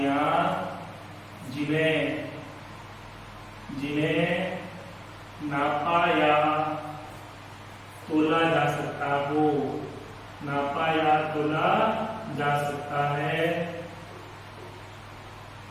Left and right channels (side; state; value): both; identical; correlation 1.00